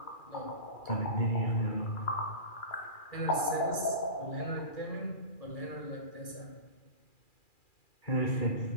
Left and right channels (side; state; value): right; late; 2.4 ms